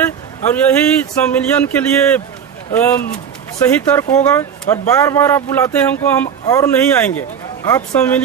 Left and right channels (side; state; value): left; quieter; 7.7 dB